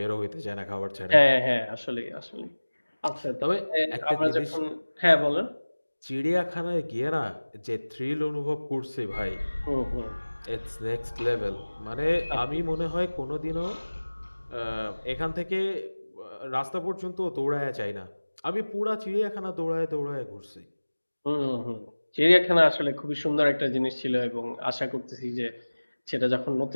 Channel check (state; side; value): inverted; both; correlation -1.00